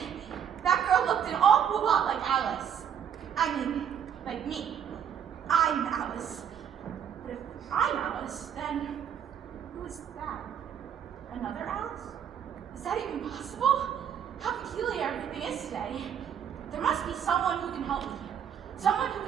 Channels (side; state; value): left; quieter; 8.7 dB